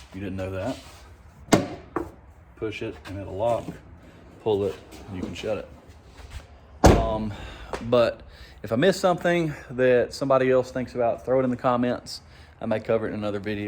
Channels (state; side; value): identical; both; correlation 1.00